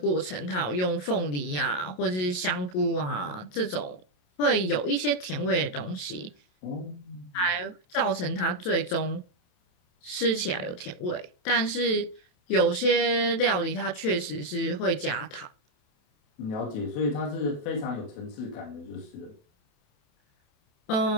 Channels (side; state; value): right; late; 28 ms